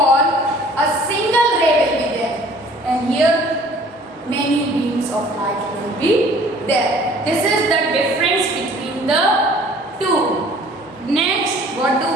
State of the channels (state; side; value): normal; both; correlation 0.52